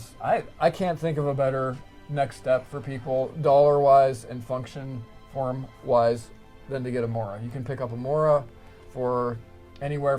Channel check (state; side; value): identical; both; correlation 1.00